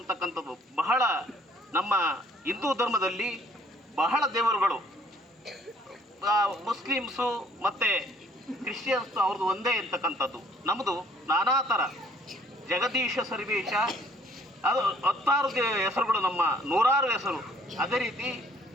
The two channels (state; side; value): normal; both; correlation 0.60